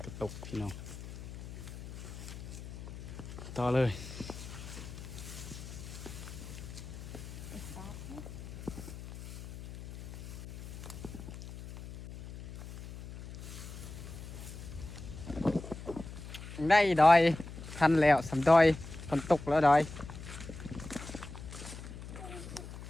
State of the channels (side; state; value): left; noise; hum, 11 dB below the sound